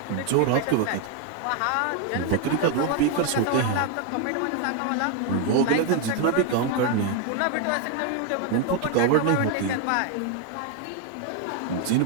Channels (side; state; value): both; different; correlation 0.01